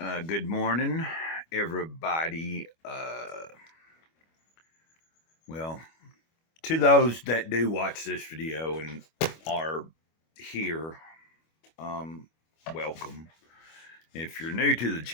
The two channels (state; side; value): late; right; 25 ms